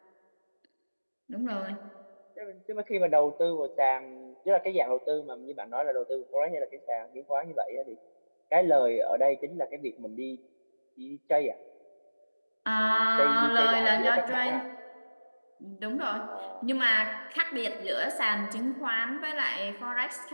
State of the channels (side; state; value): both; inverted; correlation -1.00